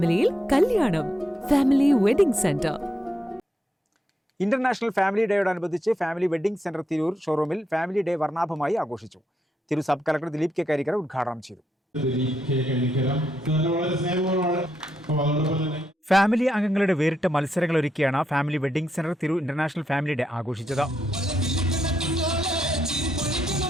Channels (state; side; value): normal; both; correlation 0.81